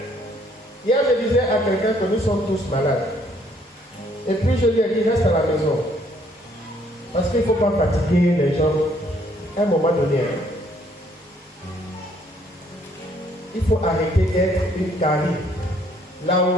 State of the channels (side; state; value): both; normal; correlation 0.65